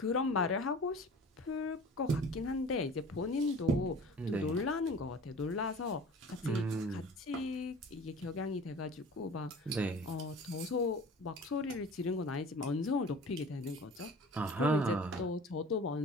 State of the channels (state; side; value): normal; both; correlation 0.42